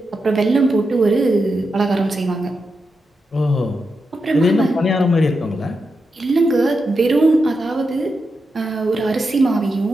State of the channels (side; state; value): both; normal; correlation 0.87